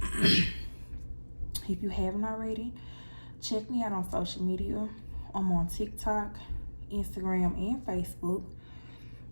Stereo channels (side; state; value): both; inverted; correlation -1.00